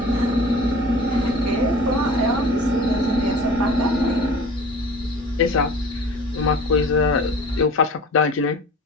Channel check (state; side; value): normal; both; correlation 0.42